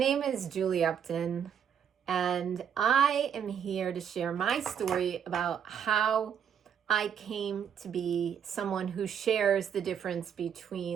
is Julie Upton, and I am here to share my story about how I came to be someone who shares the difference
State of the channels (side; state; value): left; quieter; 8.2 dB